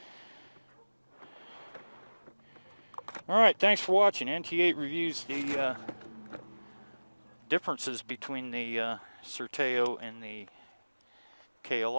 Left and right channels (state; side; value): inverted; both; correlation -1.00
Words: Alright, thanks for watching. NT8 reviews the differences between the Sertao and the